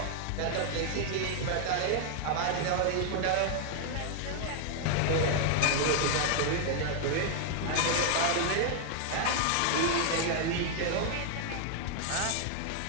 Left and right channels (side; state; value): both; different; correlation 0.00